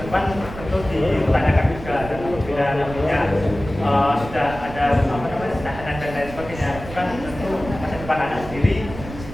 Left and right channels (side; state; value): right; noise; rumble, 12 dB below the sound